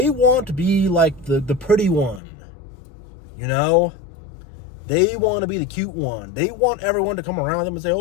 want to be like the pretty one. You know, they want to be the cute one. They want everyone to come around them and say,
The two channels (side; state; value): right; drops out; at 2.2 s